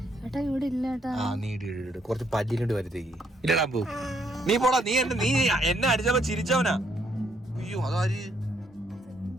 കുറച്ച് പല്ലിനോട് വരുത്തേക്ക് ഇല്ലടാ പോ. നീ പോടാ, നീ എന്നെ അടിച്ചപ്പോ ചിരിച്ചവനാ. അയ്യോ അതാര്?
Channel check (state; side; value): normal; both; correlation 0.71